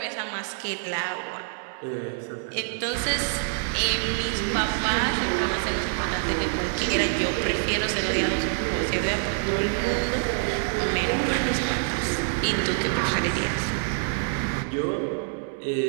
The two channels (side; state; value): left; silent; 61 dB below the other